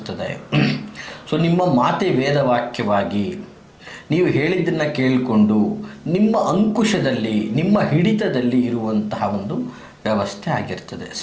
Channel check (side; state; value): both; identical; correlation 1.00